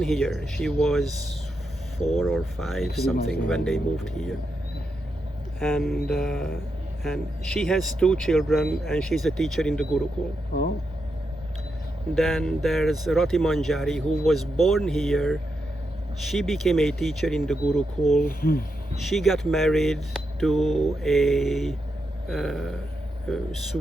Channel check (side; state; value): both; normal; correlation 0.84